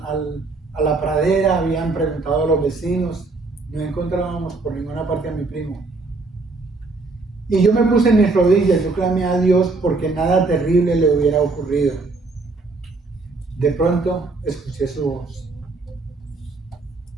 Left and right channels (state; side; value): quieter; left; 3.6 dB